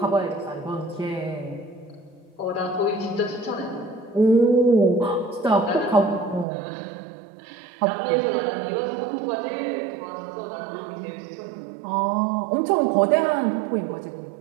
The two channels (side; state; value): left; drops out; at 6.5 s